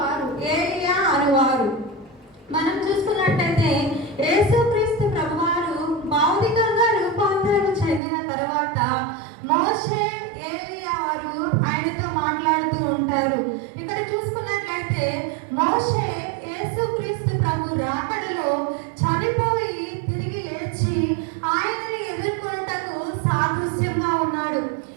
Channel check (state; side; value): drops out; left; at 8.0 s